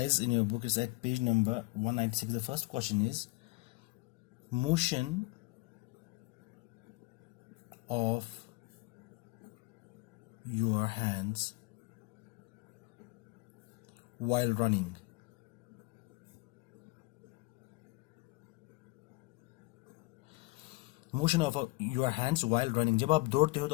in your book is at page number 196. The first question is motion of your hands while running. Motion of your hands while running. जब आप दौड़ते हो तो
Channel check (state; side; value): quieter; right; 23.9 dB